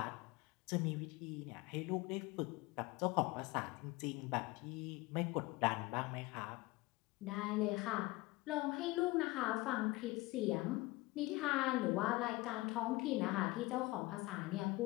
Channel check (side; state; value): right; quieter; 21.6 dB